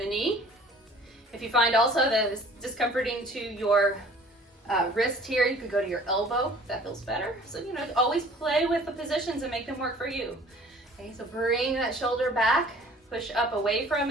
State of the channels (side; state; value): both; normal; correlation 0.51